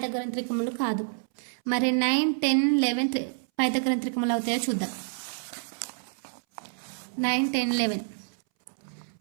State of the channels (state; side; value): silent; left; 59 dB below the other